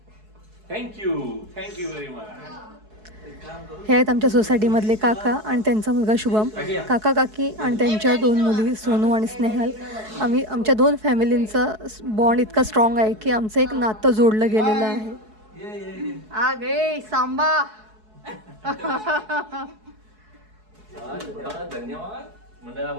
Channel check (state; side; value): late; left; 4.7 ms